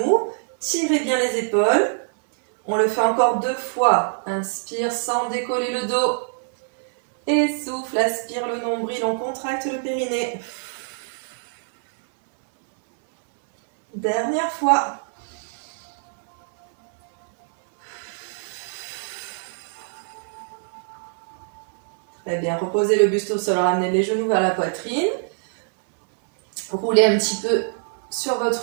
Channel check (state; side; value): silent; left; digital silence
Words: Tirez bien les épaules. On le fait encore 2 fois. Inspire sans décoller le dos. Et souffle, aspire le nombril, on contracte le périnée. Dernière fois. Très bien, reposez le buste au sol, ramenez les genoux vers la poitrine. Roulez un petit peu sur